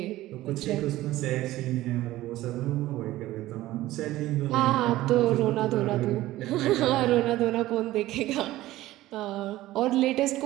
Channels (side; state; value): left; quieter; 16.1 dB